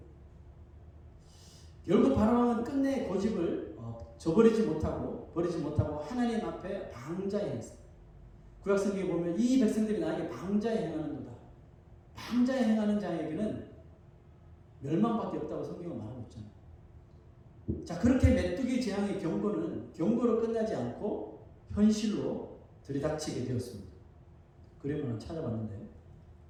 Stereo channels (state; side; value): identical; both; correlation 1.00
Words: 결국 바로왕은 끝내 고집을 버리지 못하고 하나님 앞에 방자에 행했어요. 구약성경에 보면 이 백성들이 나에게 방자에 행하는도다. 방자에 행하는 자에게는 멸망밖에 없다고 성경은 말하고 있잖아요. 자, 그렇게 메뚜기 재앙의 경고는 경고로 끝나지 않고 현실로 들이닥치게 되었습니다. 그림을 찾아봤는데